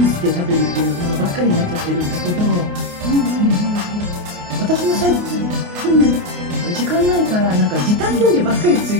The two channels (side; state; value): left; late; 28 ms